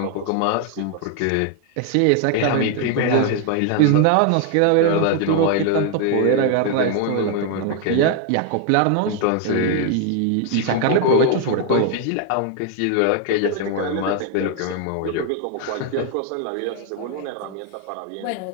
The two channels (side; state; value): both; different; correlation 0.01